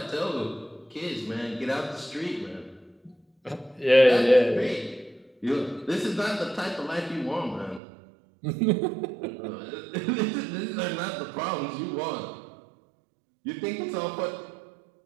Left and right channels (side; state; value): left; drops out; at 7.8 s